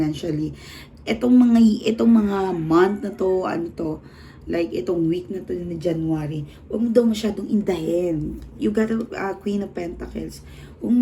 itong mga month na to, like itong week na to na January, huwag mo daw masyadong indahin. You got a Queen of Pentacles. Huwag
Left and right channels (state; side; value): identical; both; correlation 1.00